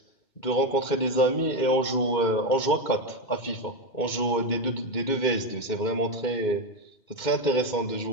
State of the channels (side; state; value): right; late; 2.2 ms